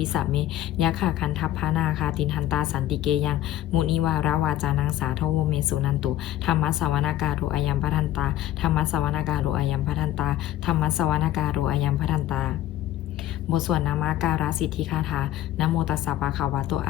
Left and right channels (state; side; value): quieter; right; 13.3 dB